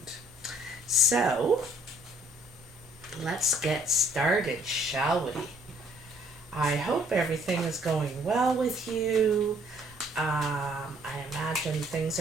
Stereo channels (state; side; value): normal; both; correlation 0.62